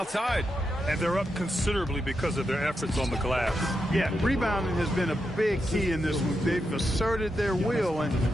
And they're up considerably because of their efforts on the glass. Yeah, rebounding has been a big key in this one. They've asserted their will and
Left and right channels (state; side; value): normal; both; correlation 0.86